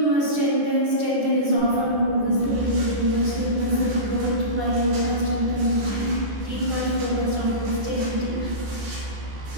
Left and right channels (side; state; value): left; late; 14 ms